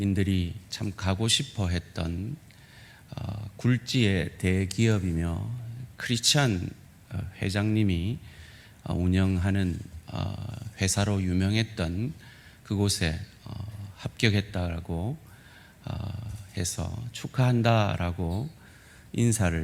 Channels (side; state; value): both; identical; correlation 1.00